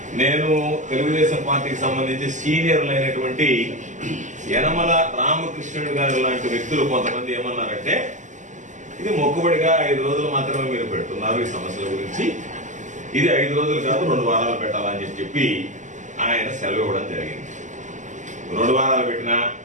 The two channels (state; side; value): late; left; 0.36 ms